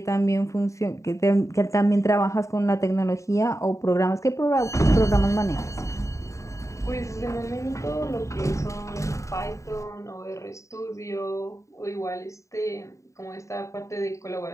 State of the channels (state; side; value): late; right; 0.15 ms